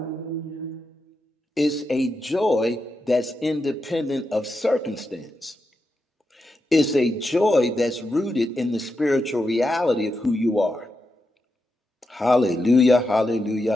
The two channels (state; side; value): normal; both; correlation 0.87